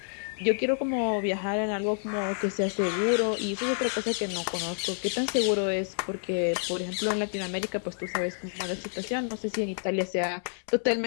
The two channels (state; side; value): silent; right; 59 dB below the other